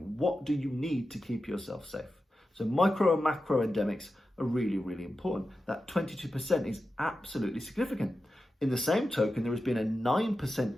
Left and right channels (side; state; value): both; normal; correlation 0.92